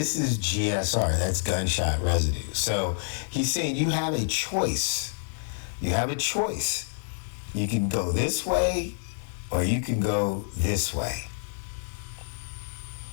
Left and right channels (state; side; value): silent; right; 60 dB below the other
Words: is GSR, that's gunshot residue. So he's saying you have a choice. You have a choice. You can go this way or you can go this way.